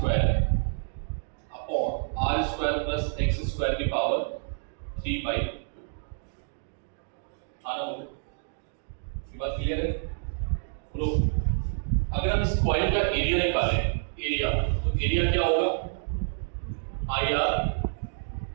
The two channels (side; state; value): left; silent; digital silence